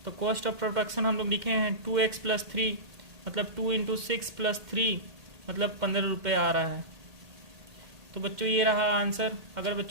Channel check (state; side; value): late; left; 2.1 ms